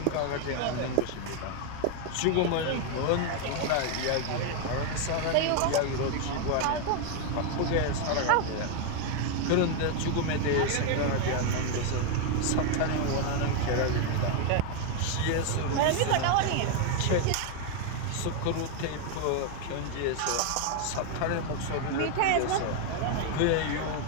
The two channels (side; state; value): both; different; correlation 0.01